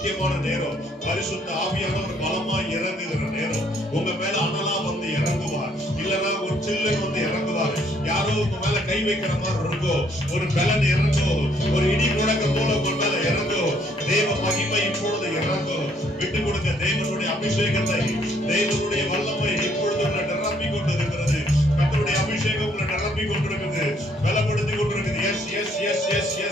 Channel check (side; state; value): both; normal; correlation 0.66